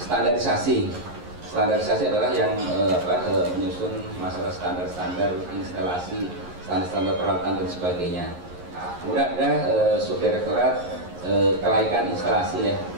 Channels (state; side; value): late; left; 11 ms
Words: standarisasi. Standarisasi adalah yang menyusun masalah standar-standar instalasi, standar-standar peralatan dan sebagainya. Kemudian ada subdirektorat kelaikan instalasi ya.